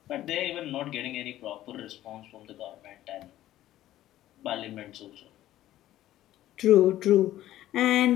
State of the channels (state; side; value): quieter; right; 13.8 dB